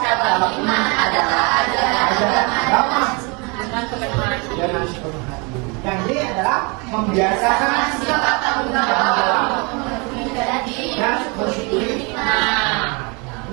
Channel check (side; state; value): left; quieter; 30.6 dB